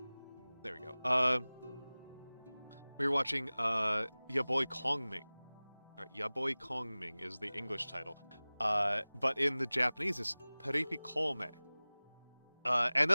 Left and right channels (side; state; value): both; inverted; correlation -0.99